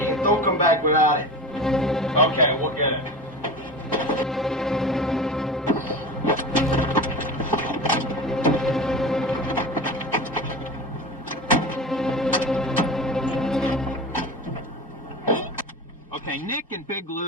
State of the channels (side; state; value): both; normal; correlation 0.30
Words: and don't come back without it. Okay, we'll get it. Okay, Nick and Big